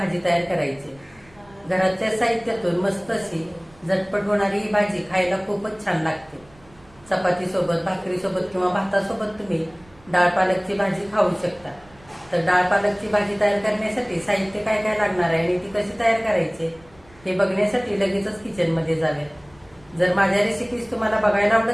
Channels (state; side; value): noise; right; rumble, 27 dB below the sound